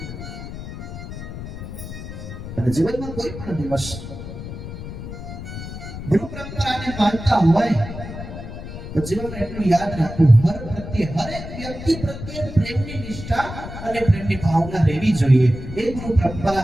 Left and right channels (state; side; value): noise; left; rumble, 9 dB below the sound